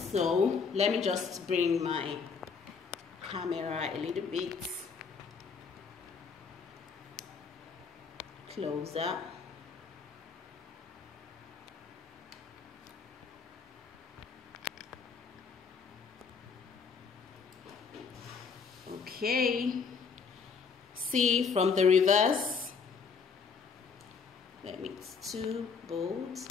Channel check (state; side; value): quieter; right; 5.6 dB